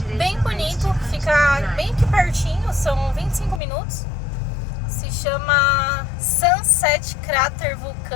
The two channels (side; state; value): right; drops out; at 3.6 s